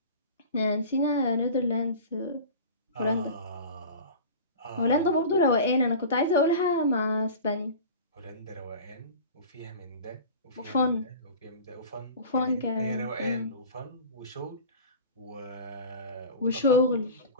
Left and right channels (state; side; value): inverted; both; correlation -0.36